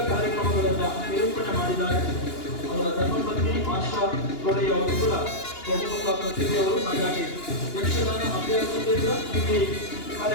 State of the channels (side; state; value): right; late; 2.8 ms